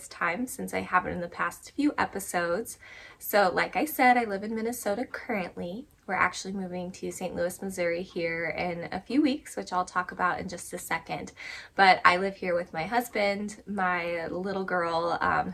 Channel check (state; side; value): identical; both; correlation 1.00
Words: time since I haven't in the past few episodes. So like I said, I live in Minnesota currently. We're actually moving to St. Louis, Missouri here in a few weeks, which I'll talk about in just a second. But I live here with my husband, my little girl,